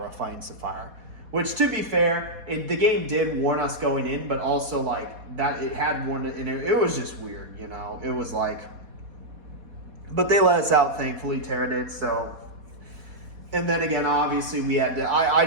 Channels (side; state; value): left; late; 4.2 ms